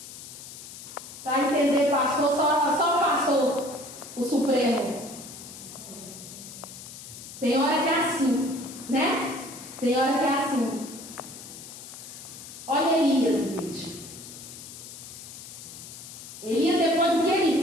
para entender pastor, só pastor, o Supremo. Tem hora que é assim, né? Tem hora que é assim. Olha Elias, gente. Elias, depois do que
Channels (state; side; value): noise; left; hiss, 14 dB below the sound